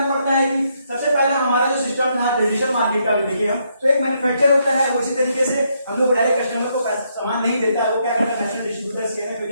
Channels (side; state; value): both; inverted; correlation -0.75